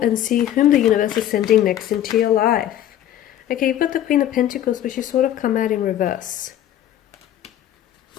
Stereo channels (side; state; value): right; quieter; 11.7 dB